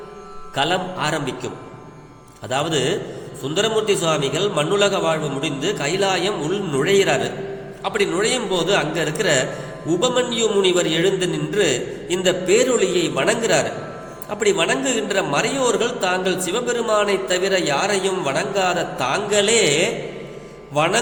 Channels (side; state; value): both; identical; correlation 1.00